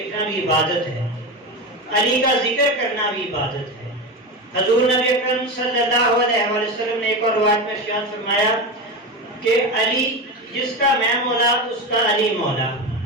بھی عبادت ہے، علی کا ذکر کرنا بھی عبادت ہے۔ حضور نبی اکرم صلی اللہ علیہ وآلہ وسلم نے ایک اور روایت میں ارشاد فرمایا کہ علی جس کا میں مولا اس کا علی مولا۔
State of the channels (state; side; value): normal; both; correlation 0.20